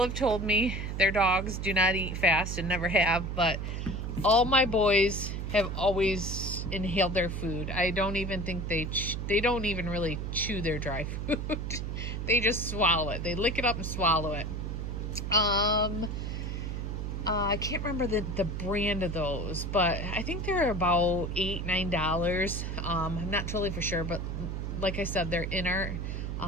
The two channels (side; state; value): right; noise; hum, 4 dB below the sound